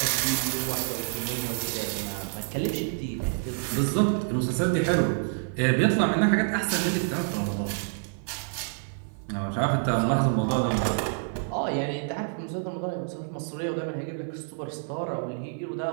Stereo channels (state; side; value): silent; left; 56 dB below the other